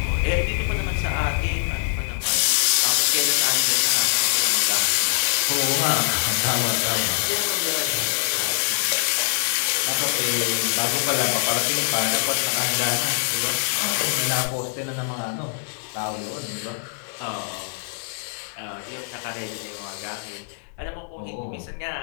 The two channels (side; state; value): right; silent; digital silence